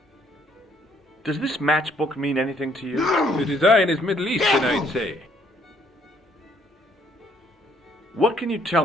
Does this matchbook mean anything to you? The design is Middle Eastern, I'd say. What can you tell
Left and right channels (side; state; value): both; normal; correlation 0.66